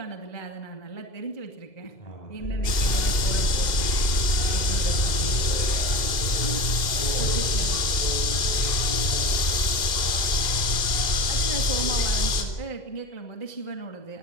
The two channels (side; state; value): right; late; 2.0 ms